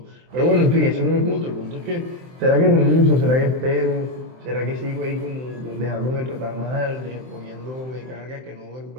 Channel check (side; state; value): left; late; 23 ms